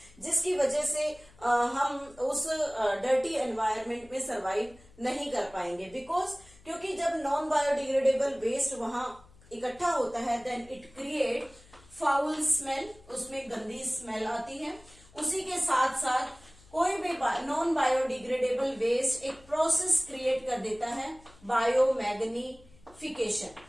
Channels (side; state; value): left; noise; hum, 25 dB below the sound